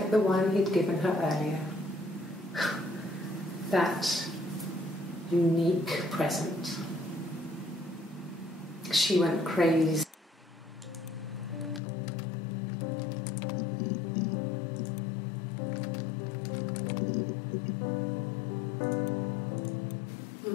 the one he'd given her earlier. That unique present. She went crazy.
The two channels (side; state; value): right; drops out; at 11.8 s